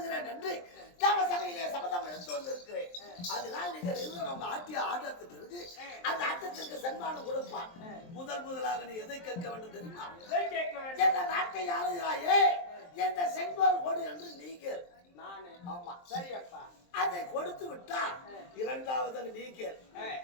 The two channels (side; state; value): right; late; 23 ms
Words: என்று தேவ சபையிலே சபதம் எடுத்து வந்திருக்கிறேன். அதனால் நீங்கள் அவங்க ஆட்டிய ஆட்டத்துக்கு பிறகு அந்த ஆட்டத்திற்கு சன்மானம் கொடுப்பான். முதலாக நீ எதை கேட்க வேண்டும் தெரியுமா? எந்த நாட்டை ஆளுகிறாயே எந்த செங்கோல் கொடு என்று நீங்கள். அதை கொடுத்து விட்டால் இரண்டாவது நீக்கல்.